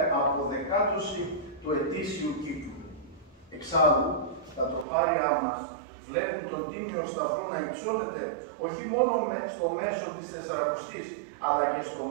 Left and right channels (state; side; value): drops out; left; at 4.9 s